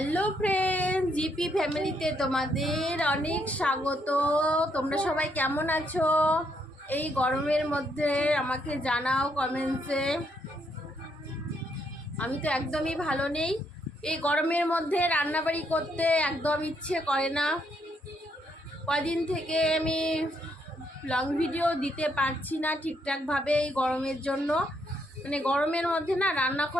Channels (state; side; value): normal; both; correlation 0.75